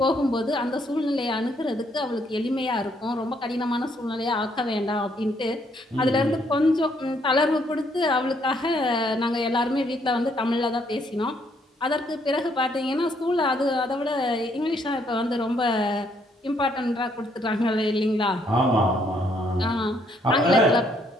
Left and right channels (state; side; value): normal; both; correlation 0.70